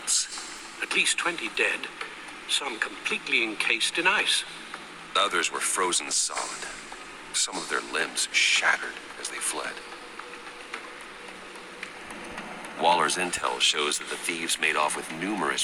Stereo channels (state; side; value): identical; both; correlation 1.00